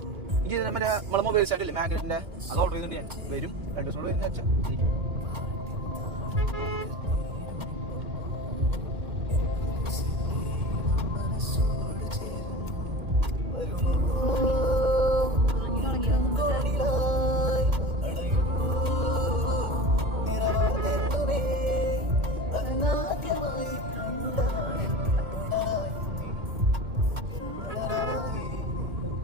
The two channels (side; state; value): left; late; 2.7 ms